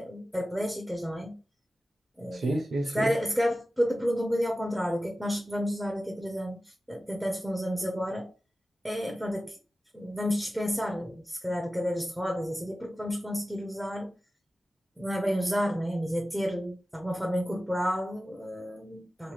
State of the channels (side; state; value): both; normal; correlation 0.95